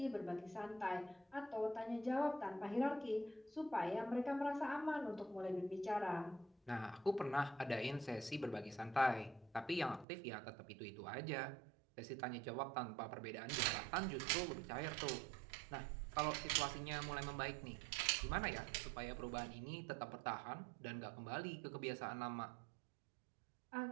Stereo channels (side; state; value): left; drops out; at 10.1 s